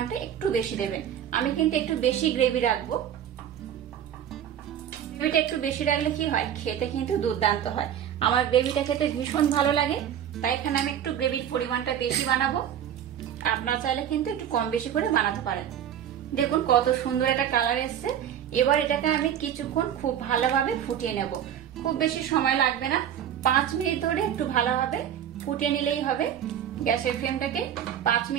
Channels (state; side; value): quieter; left; 9.9 dB